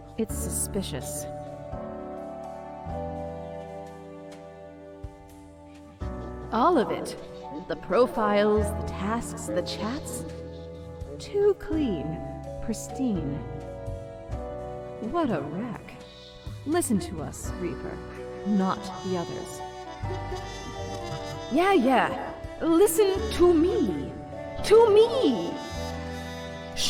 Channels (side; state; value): both; identical; correlation 1.00